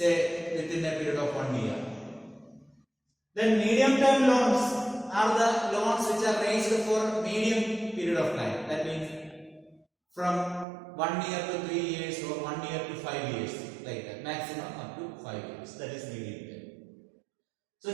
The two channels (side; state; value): left; drops out; at 10.7 s